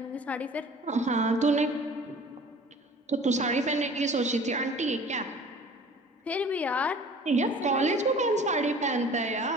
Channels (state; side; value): normal; both; correlation 0.46